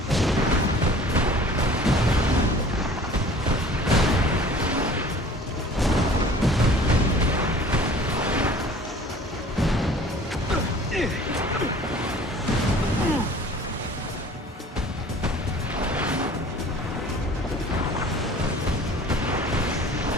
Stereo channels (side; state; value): both; normal; correlation 0.48